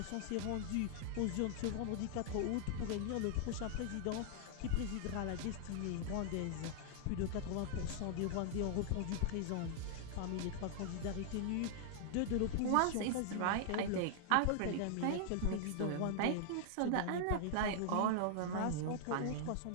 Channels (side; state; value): both; different; correlation -0.01